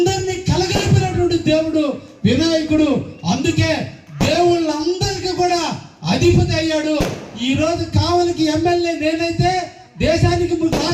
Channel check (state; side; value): identical; both; correlation 1.00